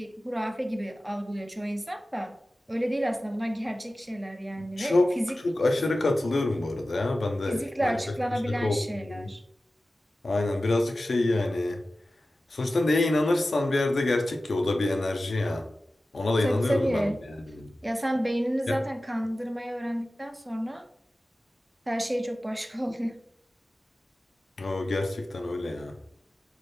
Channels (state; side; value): normal; both; correlation 0.95